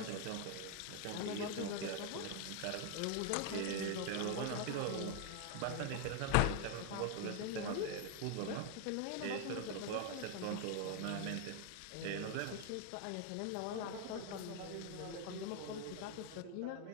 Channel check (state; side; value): different; both; correlation 0.01